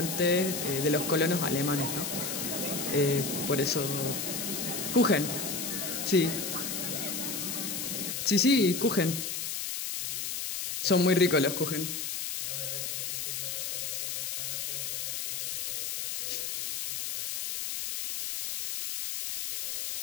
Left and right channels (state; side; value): noise; left; hiss, 3 dB below the sound